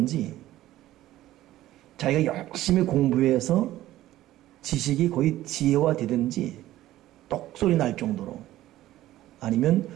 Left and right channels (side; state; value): left; quieter; 14.8 dB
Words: 자기가 열심히 공부해서 지식이 거의 지혜화되든지 똑소리 날 정도로 아니면